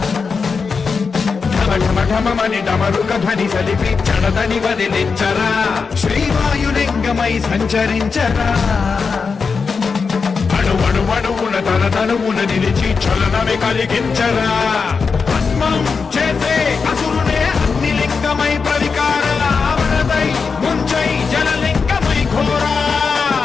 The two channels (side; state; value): right; quieter; 5.2 dB